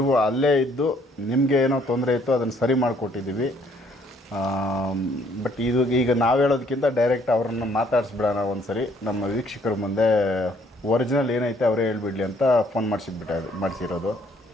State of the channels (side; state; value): both; normal; correlation 0.64